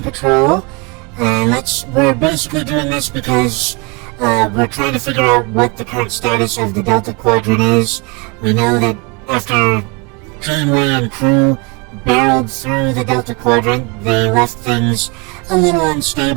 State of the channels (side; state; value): left; quieter; 28.6 dB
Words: Patrol, and we're basically doing this because we're trying to figure out what the current status of the Delta Quadrant is. We know that after Janeway and crew barreled through the Delta Quadrant, they left things a little